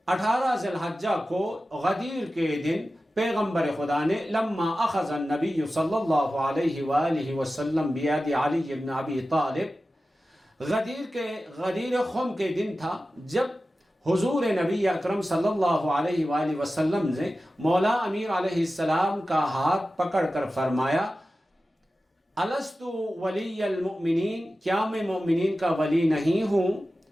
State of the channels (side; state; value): both; normal; correlation 0.94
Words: 18 ذی الحجہ کو غدیر کے دن پیغمبر خدا نے لما اخذ النبی صلی اللہ علیہ وآلہ وسلم بیاد علی بن ابی طالب، غدیر خم کے دن تھا جب حضور نبی اکرم صلی اللہ علیہ وآلہ وسلم نے مولا امیر علیہ السلام کا ہاتھ پکڑ کر فرمایا، الست ولی المؤمنین، کیا میں مومنین کا ولی نہیں ہوں؟